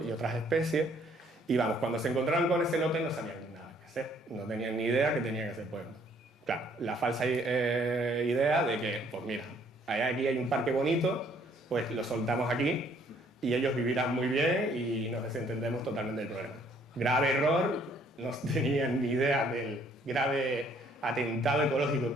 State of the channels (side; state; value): both; normal; correlation 0.63